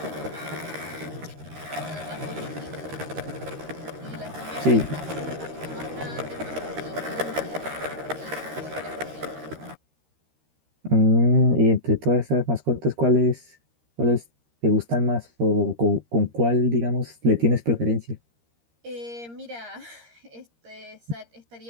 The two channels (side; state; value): left; late; 13 ms